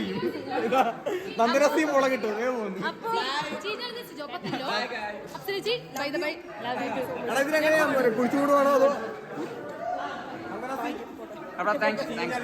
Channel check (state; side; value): identical; both; correlation 1.00